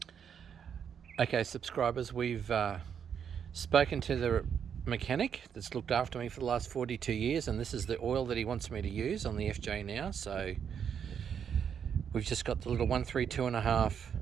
Okay subscribers, we've spoken to the mechanic that's looked after me for the last 42 years, and this is the oil that he wants me to use on the FJ now. So we've just got the little 132.5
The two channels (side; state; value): left; quieter; 7.8 dB